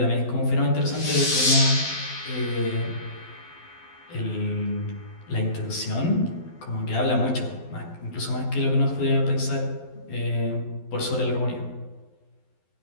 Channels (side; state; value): right; late; 12 ms